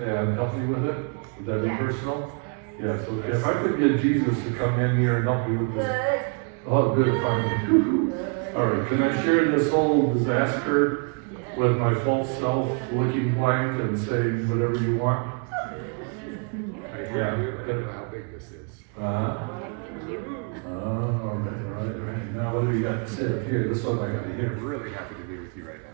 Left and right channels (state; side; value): quieter; left; 37.1 dB